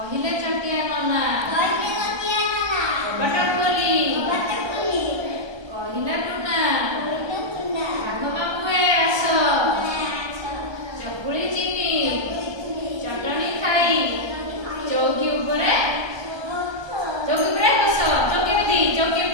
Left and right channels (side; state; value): left; late; 1.2 ms